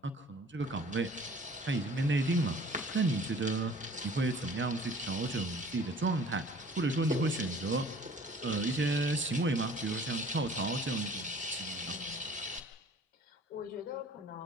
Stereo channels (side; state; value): both; normal; correlation 0.50